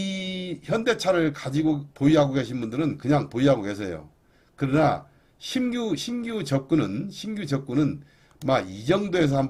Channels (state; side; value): identical; both; correlation 1.00